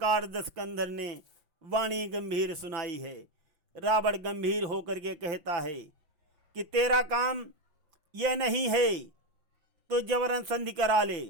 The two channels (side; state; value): left; late; 5.8 ms